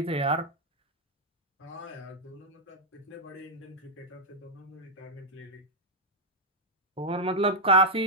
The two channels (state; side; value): normal; both; correlation -0.04